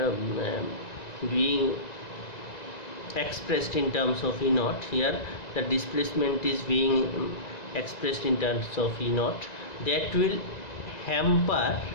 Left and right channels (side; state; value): right; late; 1.9 ms